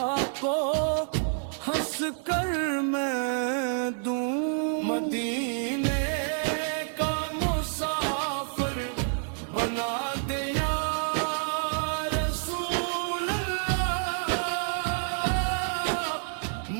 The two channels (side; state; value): left; silent; 59 dB below the other